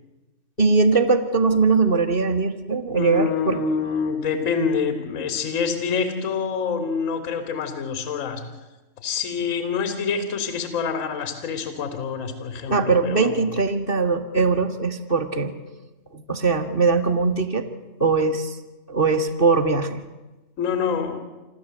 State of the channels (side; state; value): right; late; 2.6 ms